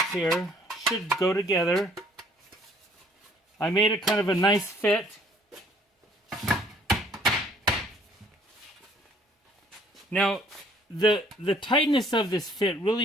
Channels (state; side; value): normal; both; correlation 0.59